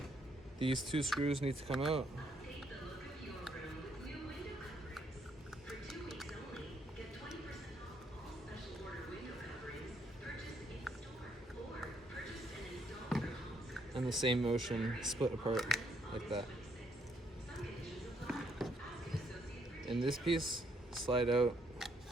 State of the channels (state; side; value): normal; both; correlation 0.71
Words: These two screws need to come out. And the same motion, split apart like that. In this piece, slide out